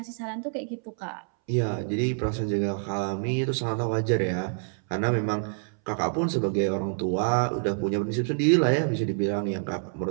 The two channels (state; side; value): silent; left; 60 dB below the other